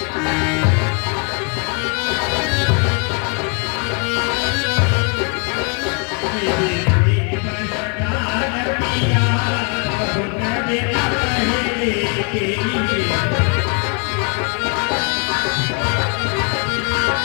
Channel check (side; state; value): right; quieter; 35.5 dB